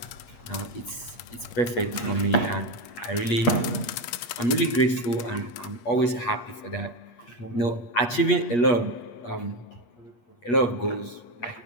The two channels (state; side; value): late; right; 8.4 ms